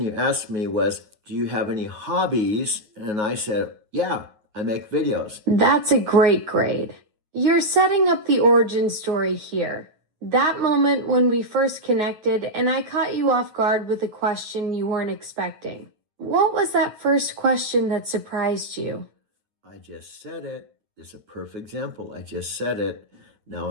asked me was, do you have any hobbies? And I said, yeah, I make videos. That's a great grade. You're setting up the origin story here. That moment when we first connected and I caught you off guard with a question you weren't expecting. What was that first question that surprised you? I just said it. It's a perfect example. I just said it. Now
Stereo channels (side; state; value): left; late; 9.5 ms